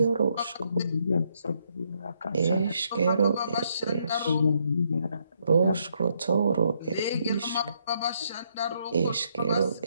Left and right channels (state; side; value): inverted; both; correlation -0.74